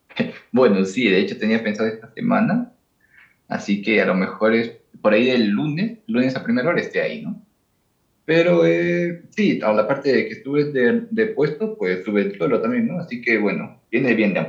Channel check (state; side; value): identical; both; correlation 1.00